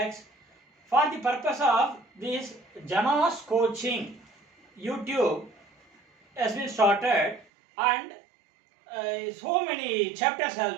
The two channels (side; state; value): left; drops out; at 7.5 s